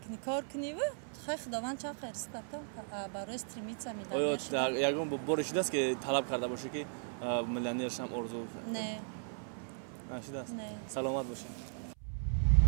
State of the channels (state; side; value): silent; left; 53 dB below the other